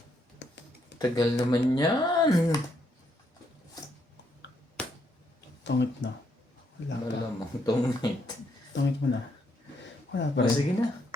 Tagal naman yan. Tungit na. Wala pa. Malamang tungit. Tungit mo na. Wala pa O, rin. sige na.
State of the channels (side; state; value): both; normal; correlation 0.75